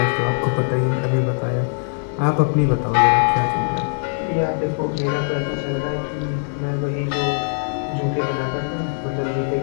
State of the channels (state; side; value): silent; right; digital silence